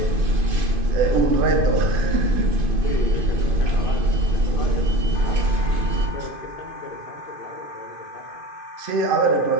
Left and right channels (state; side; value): late; left; 2.5 ms